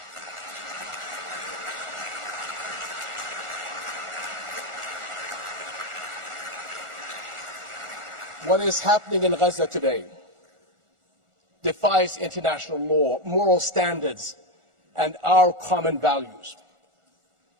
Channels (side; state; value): left; late; 1.4 ms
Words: What is happening in Gaza today defies international law, moral standards, and our common values.